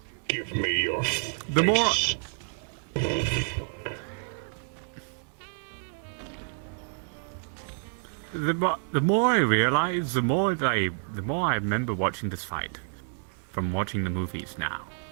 Give me your The more face. the more I realize, the more I remember watching this fight from watching the movies now.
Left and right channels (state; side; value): silent; left; 59 dB below the other